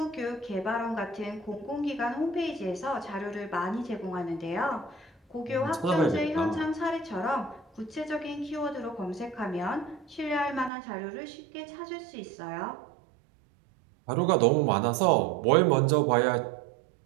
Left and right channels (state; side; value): drops out; left; at 10.7 s